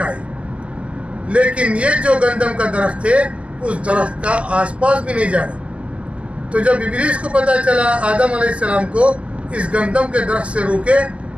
لیکن یہ جو گندم کا درخت ہے اس درخت کا آس پاس بھی نہیں جانا. تو جب ابلیس کو پتہ چلا آدم علیہ السلام کو اس گندم کے درخت سے روکے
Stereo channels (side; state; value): left; late; 0.059 ms